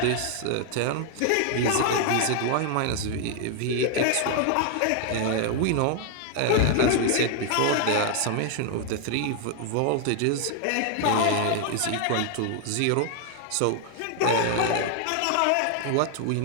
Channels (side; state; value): both; different; correlation 0.00